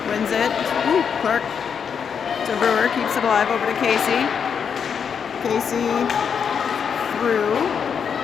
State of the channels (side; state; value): right; quieter; 7.0 dB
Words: wins it. Ooh, Clark to Brewer, keeps it alive over to Casey. Casey through.